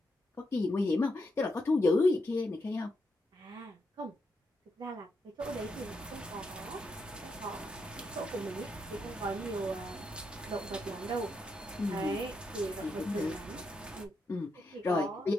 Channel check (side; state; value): both; normal; correlation 0.82